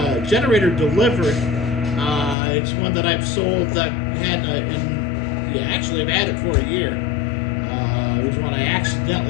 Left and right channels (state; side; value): drops out; right; at 2.4 s